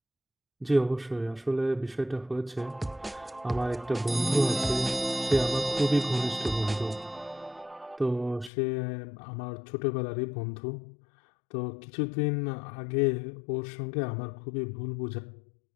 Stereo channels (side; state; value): right; drops out; at 8.5 s